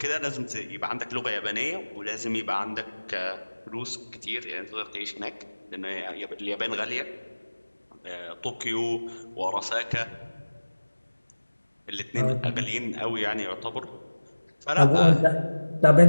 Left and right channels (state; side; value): inverted; both; correlation -1.00